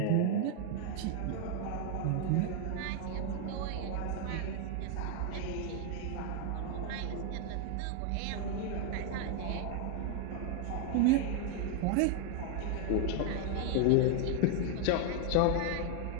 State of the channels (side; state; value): both; different; correlation 0.00